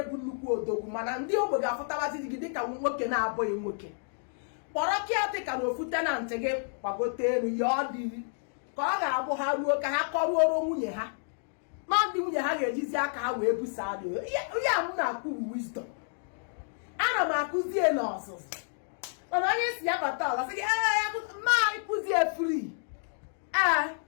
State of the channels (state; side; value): silent; right; digital silence